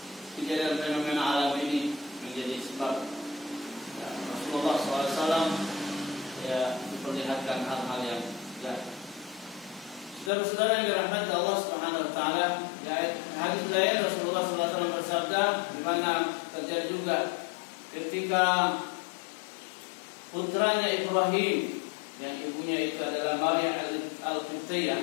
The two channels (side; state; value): right; drops out; at 10.3 s